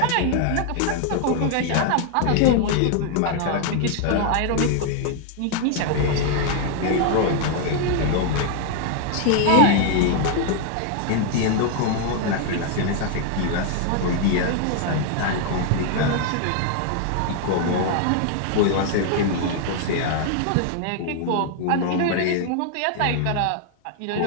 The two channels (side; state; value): both; different; correlation 0.00